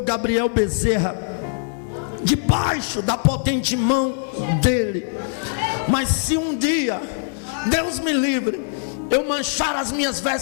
Gabriel Bezerra debaixo da potente mão dele. Mas se um dia, Deus me livre, eu manchar as minhas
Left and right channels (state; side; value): silent; right; digital silence